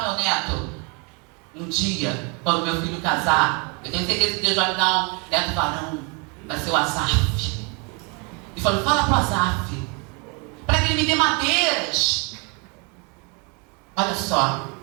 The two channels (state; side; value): quieter; left; 32.5 dB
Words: meu neto. Um dia, quando meu filho casar, eu tenho certeza que Deus vai me dar um neto varão. Vai ser o Asaf. E falou: fala para o Asaf, para que ele me dê madeiras. Olha só,